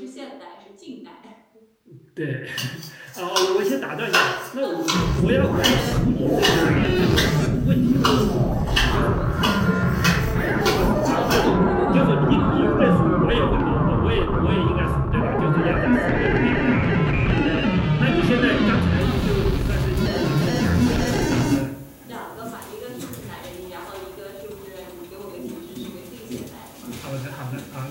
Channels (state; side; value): identical; both; correlation 1.00